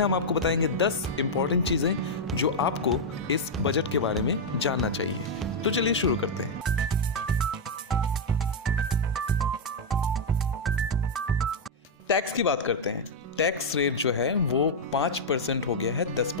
हम आपको बताएंगे 10 इंपॉर्टेंट चीजें जो आपको इस बजट के बारे में जानना चाहिए। तो चलिए शुरू करते हैं। टैक्स की बात करते हैं। टैक्स रेट जो है वो 5% हो गया है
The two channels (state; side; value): normal; both; correlation -0.01